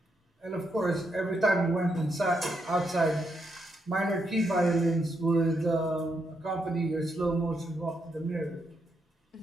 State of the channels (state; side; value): normal; both; correlation 0.80